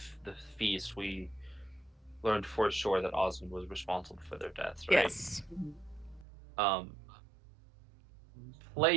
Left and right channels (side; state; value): left; drops out; at 6.2 s